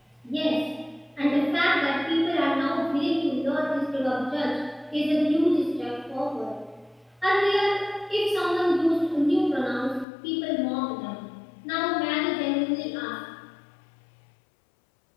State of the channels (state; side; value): drops out; right; at 10.1 s